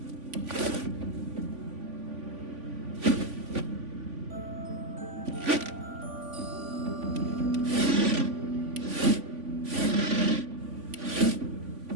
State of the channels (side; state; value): left; late; 3.5 ms